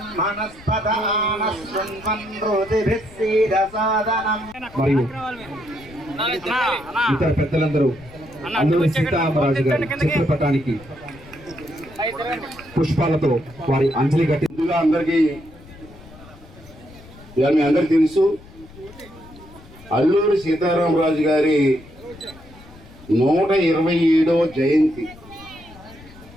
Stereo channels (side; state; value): left; noise; rumble, 21 dB below the sound